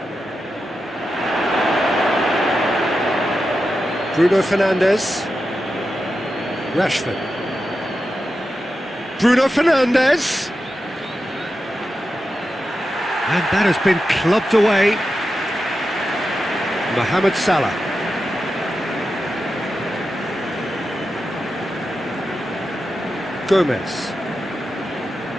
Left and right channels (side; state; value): both; normal; correlation 0.90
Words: Bruno Fernandes. Rashford. Bruno Fernandes. And that has been clubbed away. Mohamed Salah. Gomez.